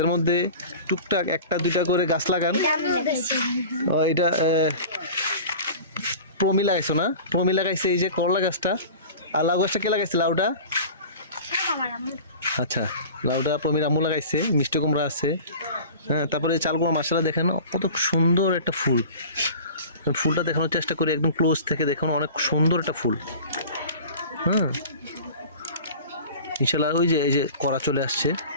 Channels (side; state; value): both; inverted; correlation -0.38